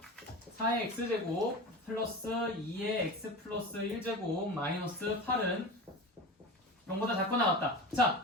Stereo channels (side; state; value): both; normal; correlation 0.30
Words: 4의 x제곱 플러스 2의 x 플러스 1제곱 마이너스 8은 0보다 작거나 같다.